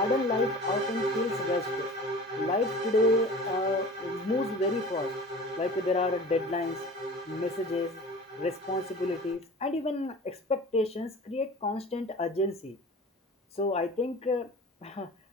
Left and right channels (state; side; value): normal; both; correlation 0.40